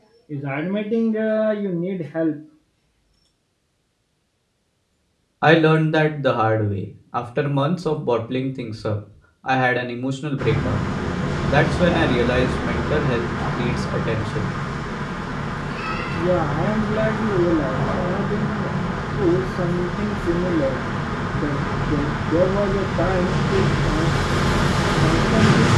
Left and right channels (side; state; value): both; identical; correlation 1.00